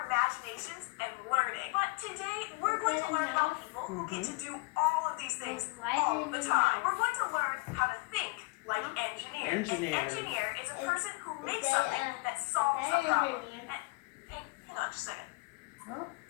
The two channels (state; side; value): quieter; right; 27.2 dB